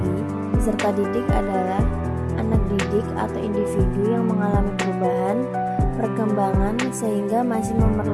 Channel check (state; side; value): identical; both; correlation 1.00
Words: peserta didik adalah anak didik atau individu yang mengalami perubahan, perkembangan sehingga masih